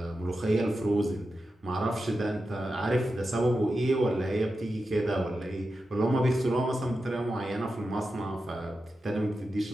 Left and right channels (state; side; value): normal; both; correlation 0.90